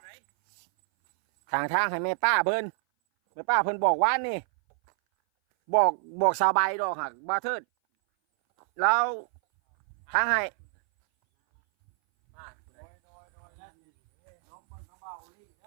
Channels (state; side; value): silent; left; 59 dB below the other